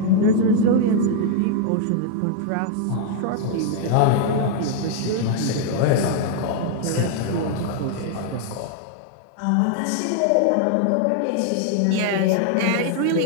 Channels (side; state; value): both; different; correlation 0.00